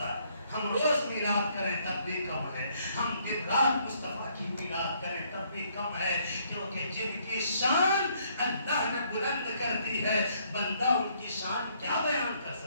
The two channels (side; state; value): both; inverted; correlation -0.68